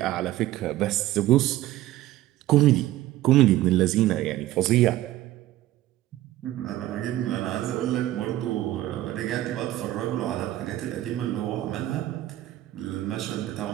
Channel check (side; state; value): left; quieter; 15.0 dB